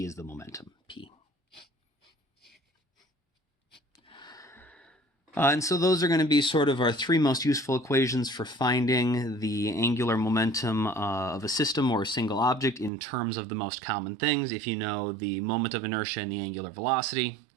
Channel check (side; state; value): left; drops out; at 12.9 s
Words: is the momentum, p. And so those are going to be sort of our three most useful equations for finding the angular momentum of a system or a single object in terms of the most common things. If you know the moment of inertia and the angular velocity,